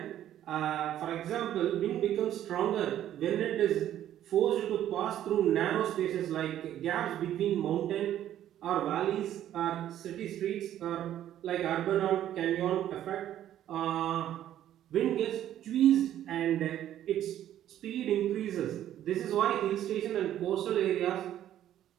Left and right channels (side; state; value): left; quieter; 11.7 dB